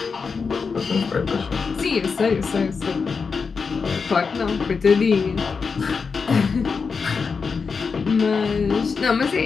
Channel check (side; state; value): right; quieter; 5.2 dB